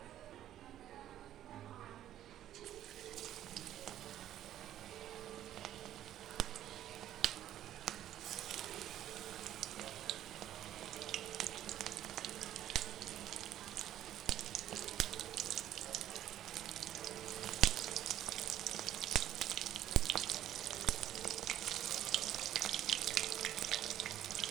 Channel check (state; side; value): quieter; left; 12.0 dB